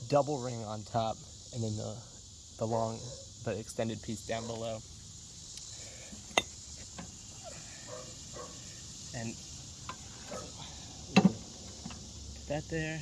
double ring on top, and then the extended piece down below. And that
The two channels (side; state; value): both; identical; correlation 1.00